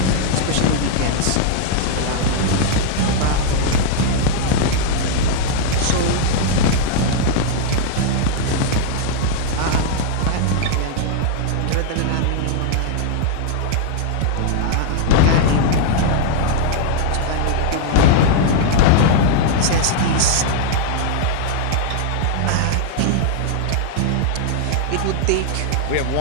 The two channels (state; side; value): different; both; correlation -0.01